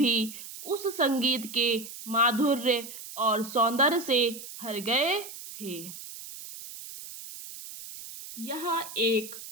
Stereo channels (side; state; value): right; noise; hiss, 13 dB below the sound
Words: उस संगीत के माधुर्य और सौंदर्य से भर गए थे। यह एक